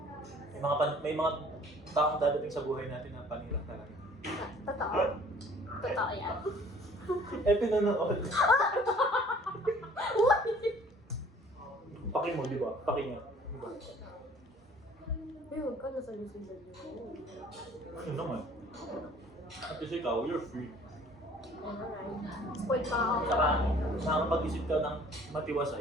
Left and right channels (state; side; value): normal; both; correlation 0.53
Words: May mga taong dadating sa buhay natin na panira talaga. Totoo. Totoo yan. Pinanood. Paki mo, di ba? Paki niya. Di ba? Uy, huwag ka nasa Luzon yun. Ano naman? At kasi ikaw, you're free. Alright. Spoiled pa ako. Tsaka nakakapag-isip ka ng